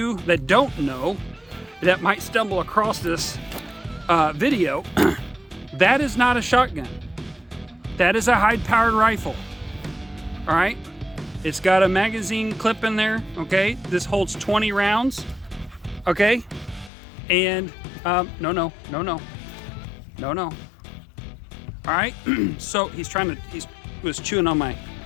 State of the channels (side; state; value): right; drops out; at 16.9 s